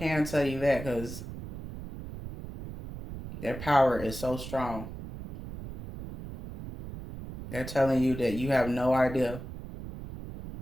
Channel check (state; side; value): noise; right; rumble, 11 dB below the sound